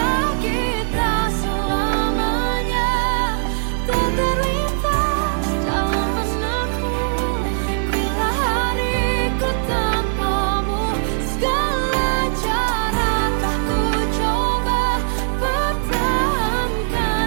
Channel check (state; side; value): silent; left; digital silence